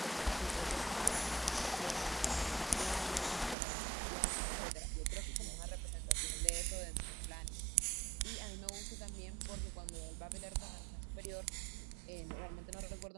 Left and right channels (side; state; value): left; drops out; at 3.6 s